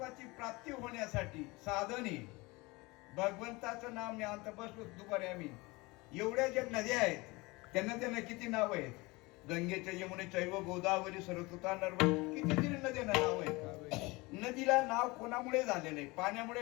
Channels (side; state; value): right; quieter; 23.8 dB